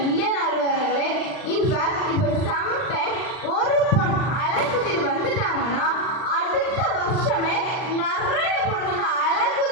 இல்லை நடுவர்களே. இன்ஃபேக்ட் இப்போ சம்டைம் ஒரு பொண்ணு அழகுத்திட்டு வந்துட்டாங்கன்னா அடுத்த வருஷமே நிறைய பொண்ணுங்க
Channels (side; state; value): right; late; 39 ms